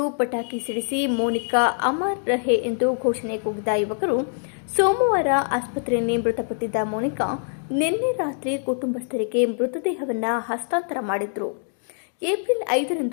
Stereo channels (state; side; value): silent; right; digital silence